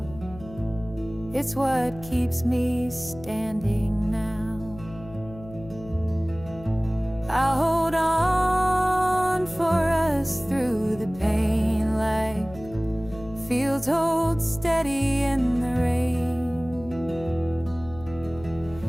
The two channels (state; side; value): noise; left; hum, 17 dB below the sound